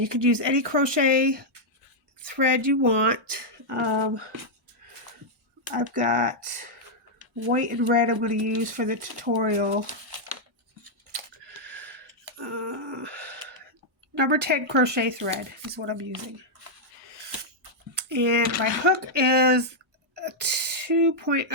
could use any crochet thread you want. I've got white and red I'm going to use for the tutorial. Number 10 crochet thread is what I'm using. And my hook is a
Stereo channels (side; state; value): both; normal; correlation -0.04